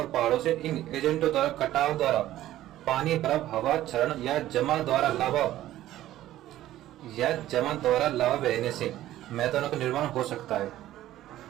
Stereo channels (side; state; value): left; quieter; 14.0 dB